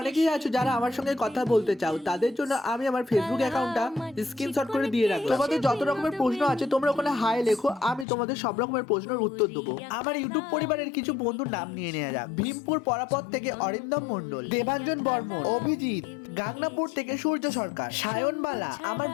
অনেকেই আছো যারা আমার সঙ্গে কথা বলতে চাও, তাদের জন্য আমি আমার ফেসবুক অ্যাকাউন্টটা স্ক্রিনশট করে দিয়ে রাখলাম। তোমাদের যত রকমের প্রশ্ন আছে তোমরা ওখানে হাই লেখো, আমি তোমাদের সব রকমের প্রশ্নের উত্তর দেবো। আমার ইউটিউব পরিবারের কিছু বন্ধুর নাম নিয়ে নেওয়া যাক। ভীমপুর পরাপত থেকে অরিন্দম মণ্ডল, দেবাঞ্জন বর্মন, অভিজিৎ, গাংনাপুর থেকে সূর্য সরকার, সায়নবালা। আমার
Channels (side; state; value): right; drops out; at 8.1 s